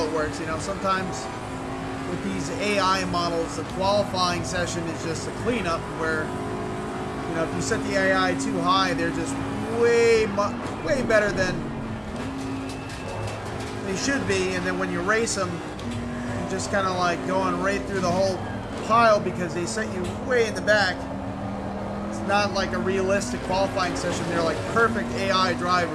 it works, you know, sometimes with these AI models, the qualifying session is just a cleanup where, you know, if you set the AI too high, they're just way better than they should be, and then when you race them, you're just kind of like going right through the whole pile because they set you way in the back. It's not like a realistic qualifying session. They're like perfect AI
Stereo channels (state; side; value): identical; both; correlation 1.00